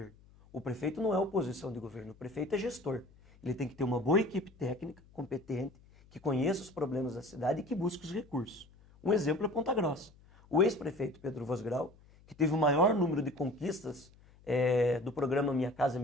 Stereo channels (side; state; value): left; noise; hum, 26 dB below the sound